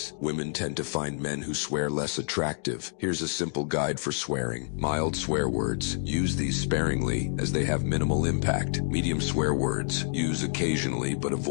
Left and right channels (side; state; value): right; silent; digital silence